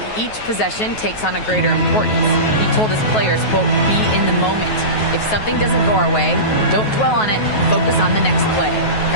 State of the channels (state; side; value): late; right; 9.3 ms